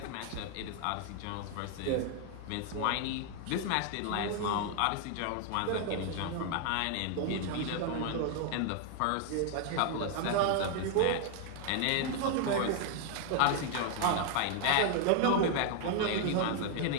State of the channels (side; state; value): both; different; correlation 0.00